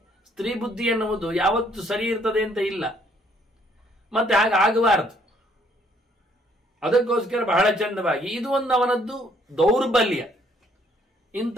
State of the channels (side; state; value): both; normal; correlation 0.65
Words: ಸ್ತ್ರೀ ಬುದ್ಧಿ ಎನ್ನುವುದು ಯಾವತ್ತು ಸರಿ ಇರ್ತದೆ ಅಂತ ಇಲ್ಲ, ಮತ್ತೆ ಹಾಗೆ ಆಗಬಾರದು. ಅದಕ್ಕೋಸ್ಕರ ಬಹಳ ಚಂದವಾಗಿ ಇದು ಒಂದು ಅವನದ್ದು ದೌರ್ಬಲ್ಯ. ಇಂಥ